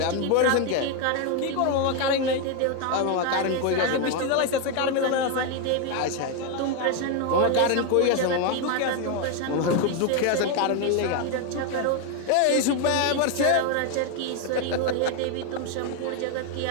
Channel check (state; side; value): different; both; correlation 0.01